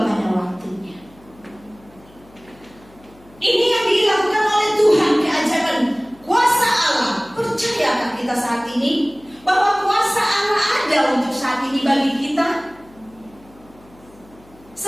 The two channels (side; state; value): left; noise; hum, 26 dB below the sound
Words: pada waktunya. Ini yang dilakukan oleh Tuhan, keajaiban kuasa Allah. Percayakah kita saat ini bahwa kuasa Allah ada untuk saat ini bagi kita?